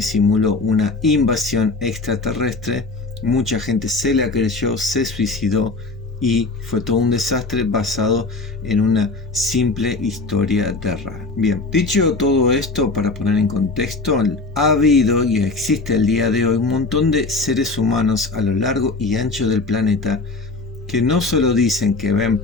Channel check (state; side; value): quieter; right; 3.5 dB